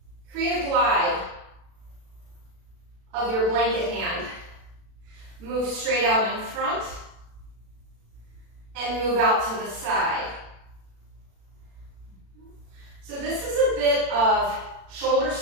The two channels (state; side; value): late; left; 36 ms